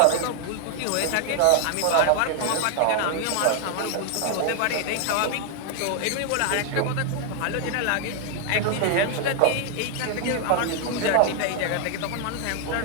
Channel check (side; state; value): both; different; correlation 0.00